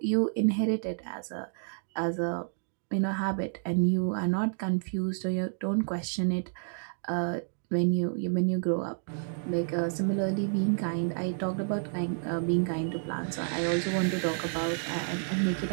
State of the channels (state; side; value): silent; left; digital silence